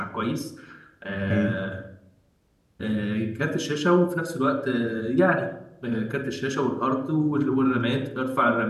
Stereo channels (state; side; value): identical; both; correlation 1.00